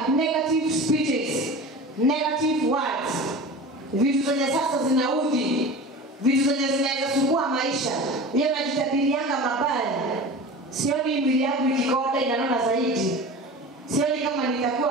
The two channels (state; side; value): normal; both; correlation 0.34